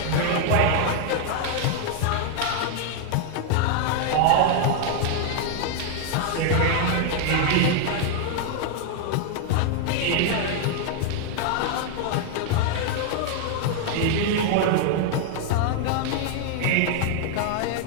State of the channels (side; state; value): both; different; correlation 0.00